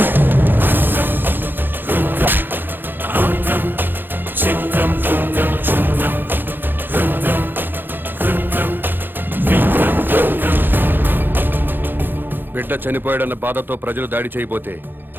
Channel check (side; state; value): left; late; 0.096 ms